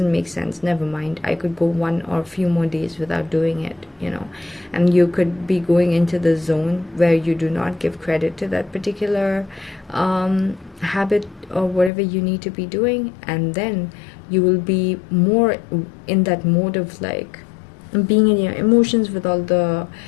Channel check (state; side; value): drops out; right; at 11.9 s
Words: make sense, never mind, I could go one or a few more days without doing it, you know. And you could be going into the zone where you do not give credit to that particular habit or whatever you need to be doing, and then you will be more in that mode of like being in your emotions with all the